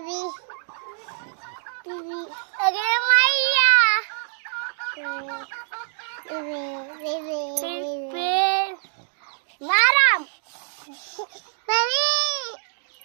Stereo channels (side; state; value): left; silent; 62 dB below the other